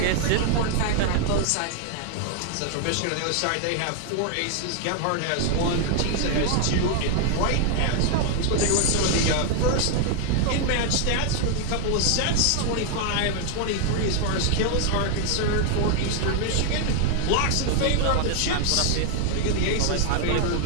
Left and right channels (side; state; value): both; different; correlation 0.00